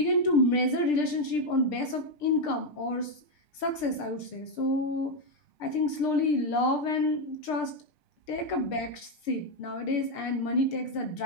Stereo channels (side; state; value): right; late; 6.7 ms